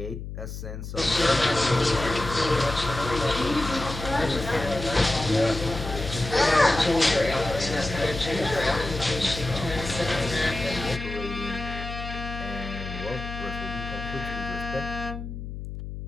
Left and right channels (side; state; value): left; noise; hum, 8 dB below the sound